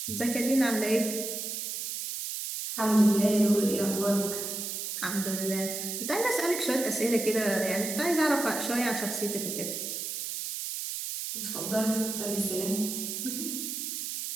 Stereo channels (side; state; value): right; noise; hiss, 4 dB below the sound